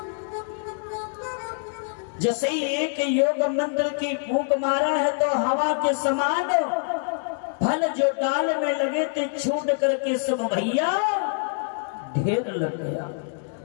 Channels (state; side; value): silent; right; digital silence